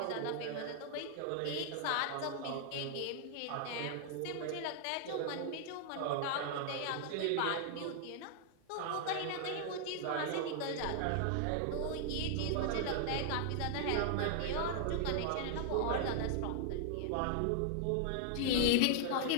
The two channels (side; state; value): both; different; correlation 0.00